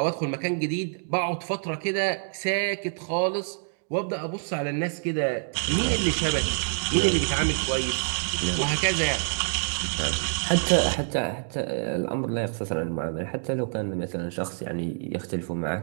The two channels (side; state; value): left; silent; digital silence